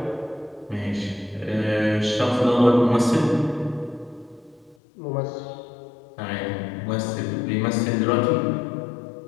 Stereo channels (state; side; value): drops out; right; at 4.8 s